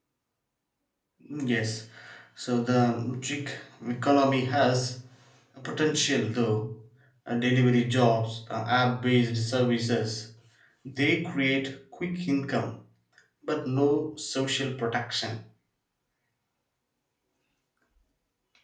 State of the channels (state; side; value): identical; both; correlation 1.00